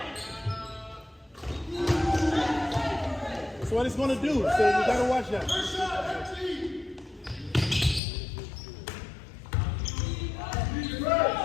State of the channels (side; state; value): right; drops out; at 8.0 s